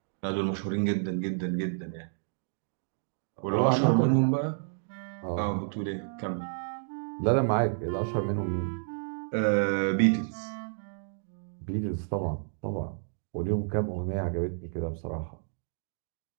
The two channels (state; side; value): silent; left; digital silence